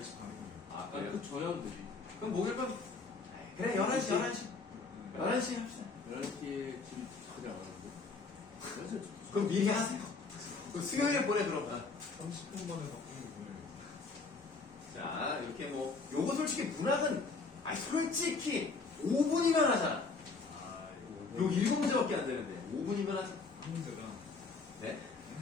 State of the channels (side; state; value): right; quieter; 4.2 dB